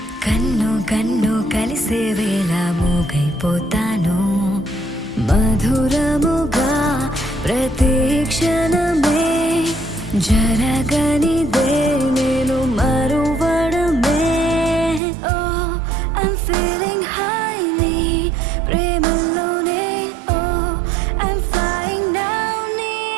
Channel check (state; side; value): drops out; left; at 15.0 s